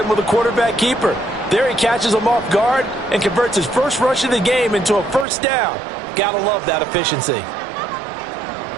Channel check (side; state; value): left; drops out; at 5.2 s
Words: with a quarterback keeper. There he catches him off guard and converts his first rush of the game into a first down. Gotta love that efficiency.